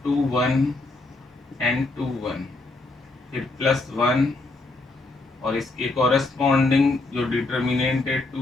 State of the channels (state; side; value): quieter; right; 3.2 dB